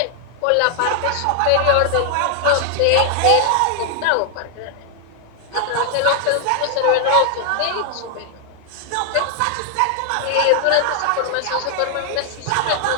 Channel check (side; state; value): both; different; correlation 0.00